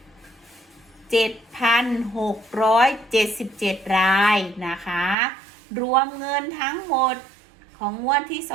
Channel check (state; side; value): drops out; left; at 5.2 s